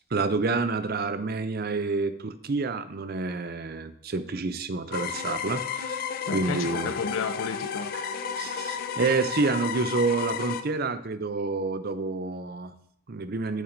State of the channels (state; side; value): normal; both; correlation 0.21